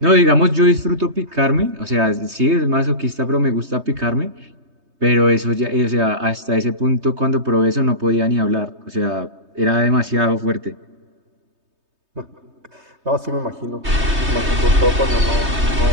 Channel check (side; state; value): left; late; 3.2 ms